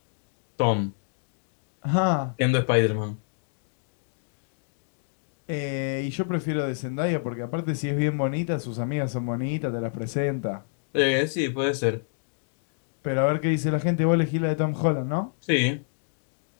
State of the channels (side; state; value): right; silent; digital silence